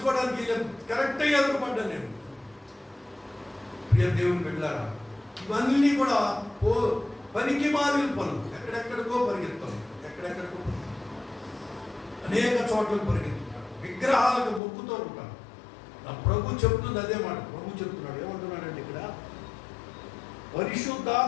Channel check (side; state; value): right; drops out; at 14.6 s